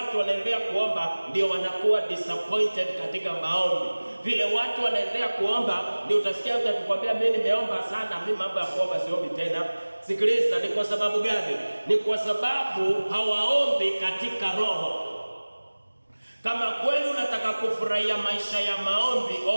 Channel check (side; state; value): both; inverted; correlation -1.00